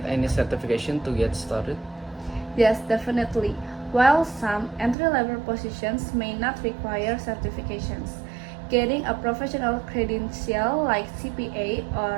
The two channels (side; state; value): left; drops out; at 5.0 s